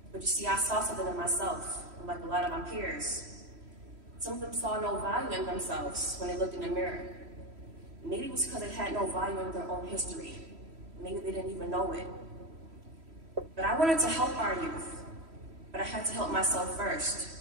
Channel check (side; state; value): left; late; 3.1 ms